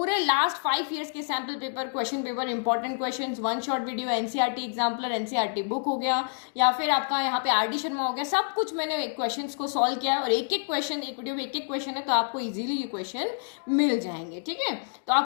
लास्ट 5 ईयर्स के sample paper, question paper, important questions, 1 short video, NCERT exemplar, NCERT book हो गया, या फिर आपका यहाँ पे आरडी शर्मा हो गया, सब कुछ मैंने क्वेश्चन को सॉल्व किया है। और एक एक क्वेश्चन, एक वीडियो में एक एक क्वेश्चन है, तो आपको इजीली ये क्वेश्चन मिल जाएंगे। ठीक है, तो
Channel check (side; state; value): right; silent; digital silence